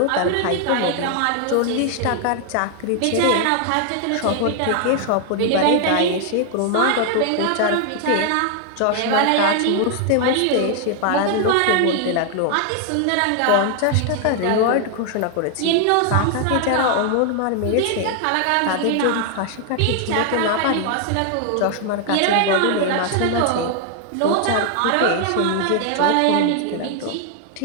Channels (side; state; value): both; different; correlation 0.00